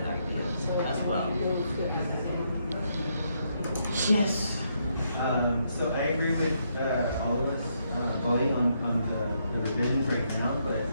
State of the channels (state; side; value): inverted; both; correlation -0.76